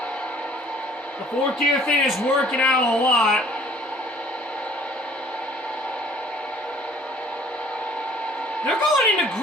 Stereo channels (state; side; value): normal; both; correlation 0.55